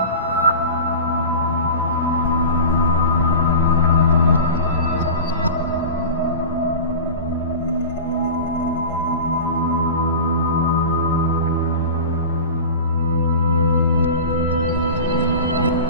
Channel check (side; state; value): both; inverted; correlation -0.31